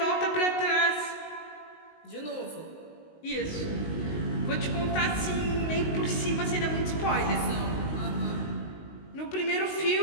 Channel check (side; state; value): right; late; 19 ms